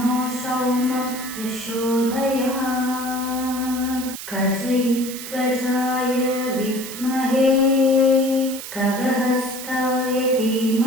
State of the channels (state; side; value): noise; right; hiss, 10 dB below the sound